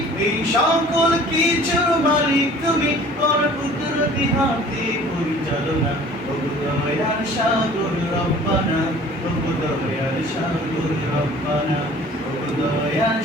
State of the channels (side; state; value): both; normal; correlation 0.48